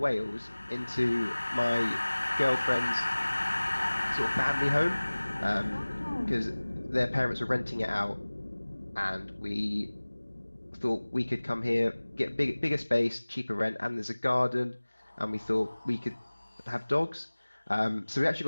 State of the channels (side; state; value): both; inverted; correlation -1.00